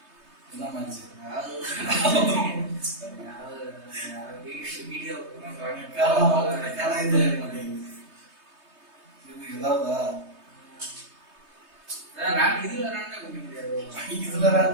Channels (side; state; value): left; late; 3.2 ms